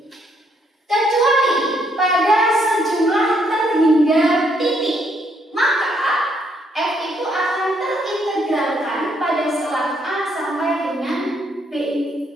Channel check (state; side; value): normal; both; correlation 0.71